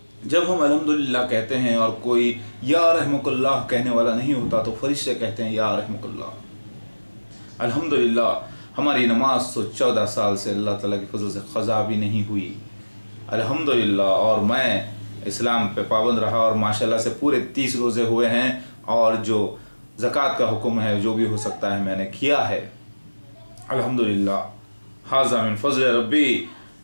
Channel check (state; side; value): inverted; both; correlation -1.00